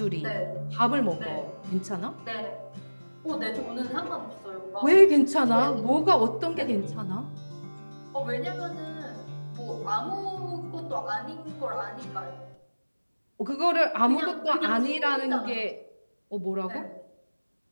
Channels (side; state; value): both; inverted; correlation -1.00